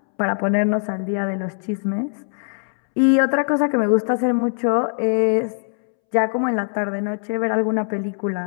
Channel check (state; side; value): silent; right; 65 dB below the other